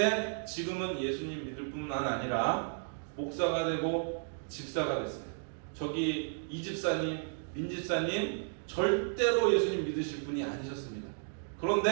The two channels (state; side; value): silent; left; digital silence